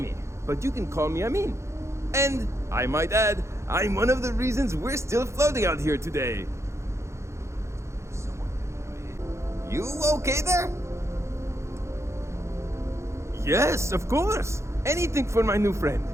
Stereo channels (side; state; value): left; late; 0.14 ms